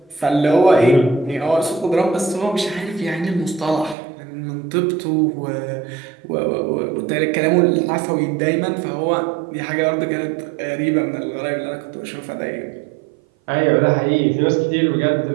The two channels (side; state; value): left; drops out; at 4.0 s